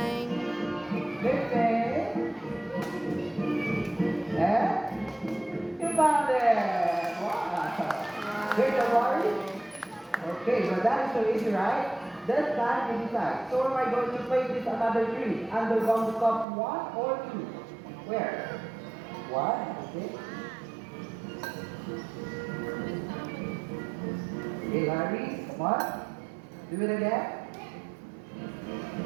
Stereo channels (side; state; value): left; drops out; at 16.4 s